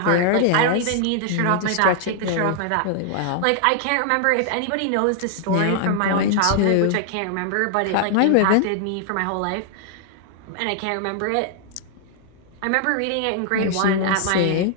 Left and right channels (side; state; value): both; different; correlation 0.00